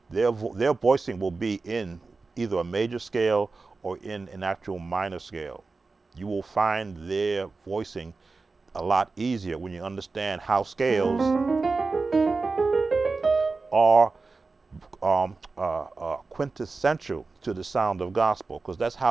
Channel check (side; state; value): left; quieter; 4.0 dB